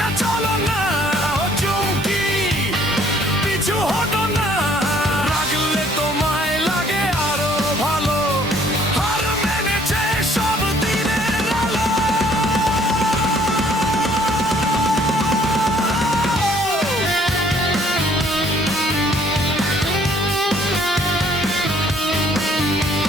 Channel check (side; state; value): both; normal; correlation 0.61